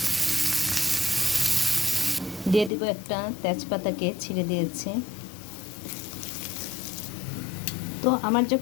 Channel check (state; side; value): drops out; right; at 2.7 s